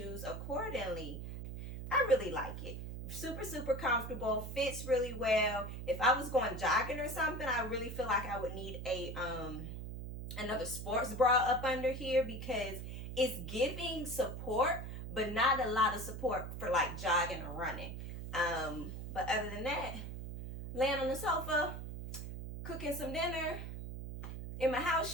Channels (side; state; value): right; noise; hum, 7 dB below the sound